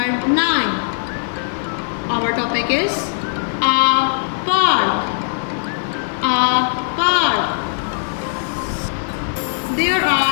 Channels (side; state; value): right; silent; digital silence